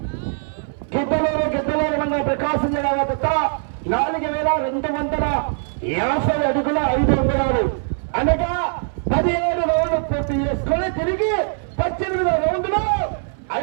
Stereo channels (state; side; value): silent; left; 62 dB below the other